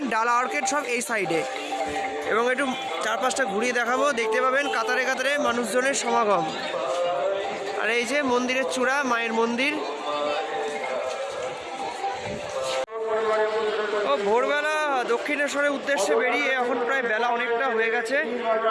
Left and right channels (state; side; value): identical; both; correlation 1.00